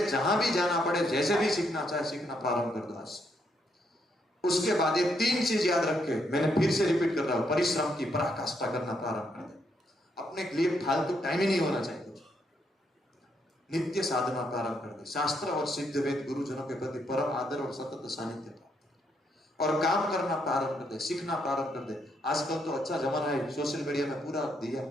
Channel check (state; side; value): normal; both; correlation 0.76